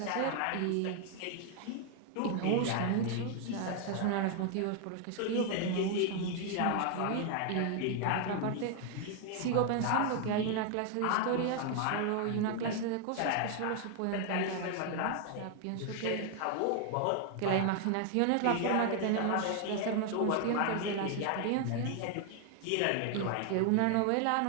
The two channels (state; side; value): different; both; correlation 0.00